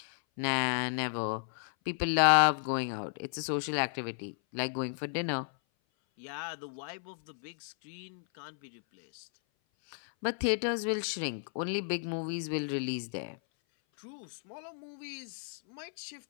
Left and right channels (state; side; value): silent; right; 56 dB below the other